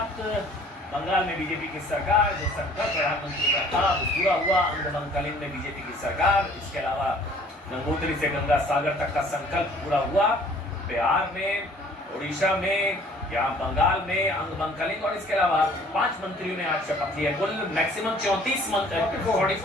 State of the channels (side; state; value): both; normal; correlation 0.54